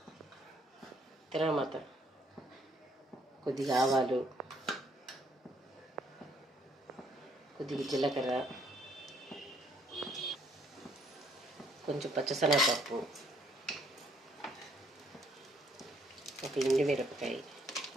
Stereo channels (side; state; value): both; normal; correlation 0.66